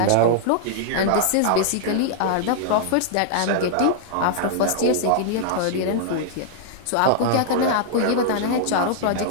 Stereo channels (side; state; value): both; different; correlation -0.01